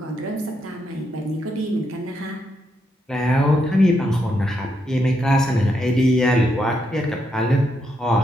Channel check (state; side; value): normal; both; correlation 0.80